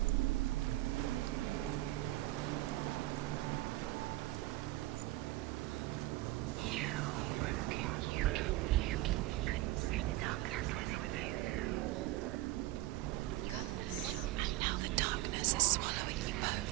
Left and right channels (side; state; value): left; quieter; 17.3 dB